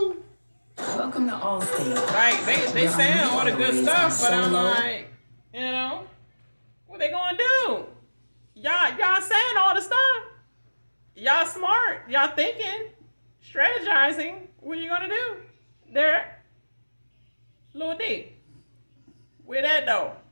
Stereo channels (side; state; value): both; inverted; correlation -1.00